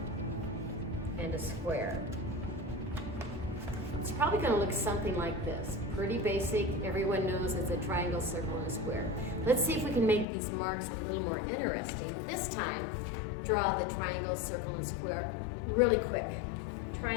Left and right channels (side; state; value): right; drops out; at 10.2 s